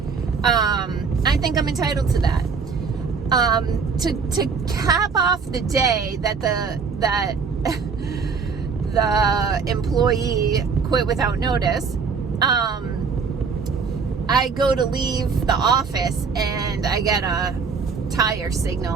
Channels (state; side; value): quieter; left; 5.4 dB